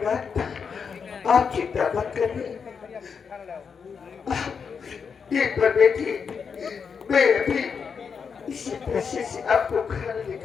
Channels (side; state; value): right; quieter; 6.1 dB